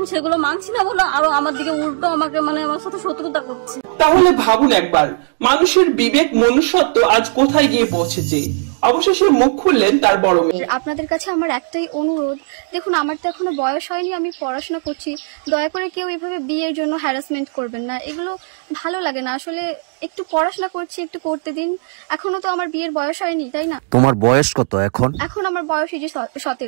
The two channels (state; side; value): silent; left; digital silence